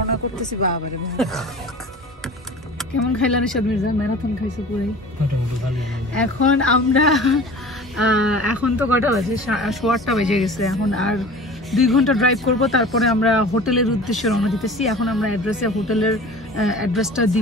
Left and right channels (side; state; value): both; normal; correlation 0.40